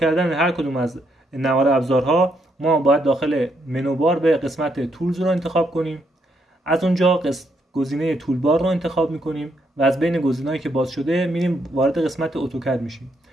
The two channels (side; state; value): both; normal; correlation 0.76